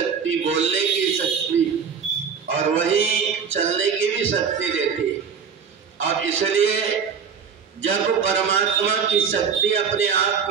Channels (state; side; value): quieter; left; 6.6 dB